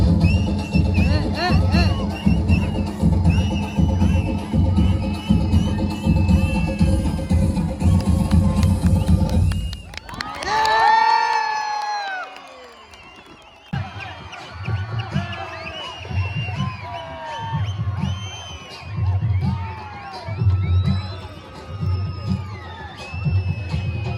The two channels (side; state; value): both; identical; correlation 1.00